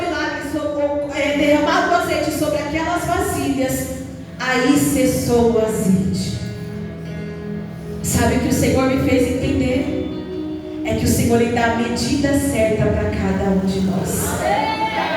milagre, derramado o azeite sobre aquelas vasilhas, aí cessou o azeite. Sabe o que o Senhor me fez entender? É que o Senhor lhe dá a medida certa para cada um de nós.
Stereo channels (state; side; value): identical; both; correlation 1.00